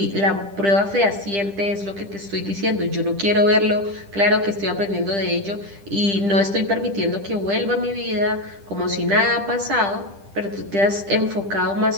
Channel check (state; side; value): late; left; 10 ms